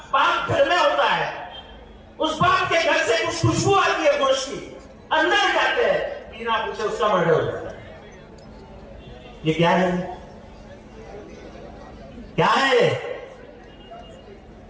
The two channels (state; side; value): identical; both; correlation 1.00